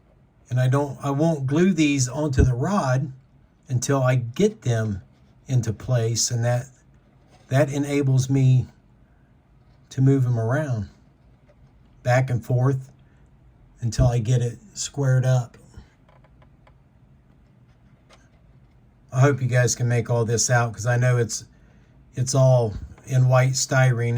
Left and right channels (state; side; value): identical; both; correlation 1.00